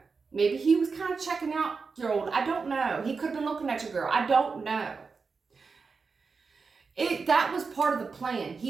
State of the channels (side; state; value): left; quieter; 4.8 dB